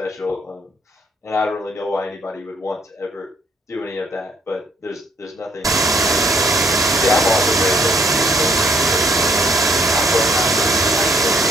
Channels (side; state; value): both; normal; correlation 0.65